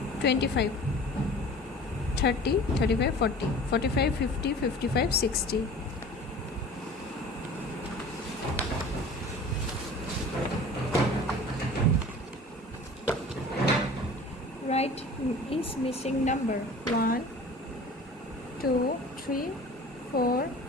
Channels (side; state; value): both; normal; correlation 0.42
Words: 25 30 35 40 45 50 55 60. Write is missing number. 1 2 3 4